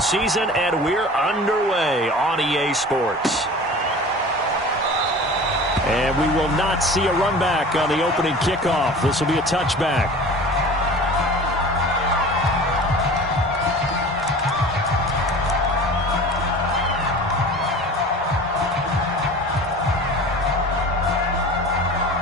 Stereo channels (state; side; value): normal; both; correlation 0.39